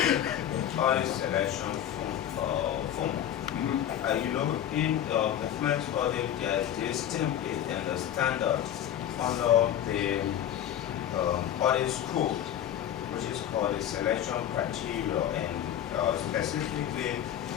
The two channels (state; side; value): quieter; right; 10.7 dB